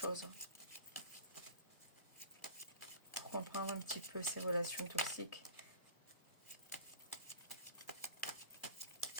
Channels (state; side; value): inverted; both; correlation -0.42